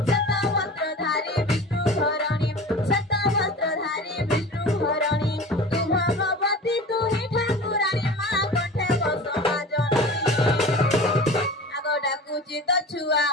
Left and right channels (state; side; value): normal; both; correlation 0.37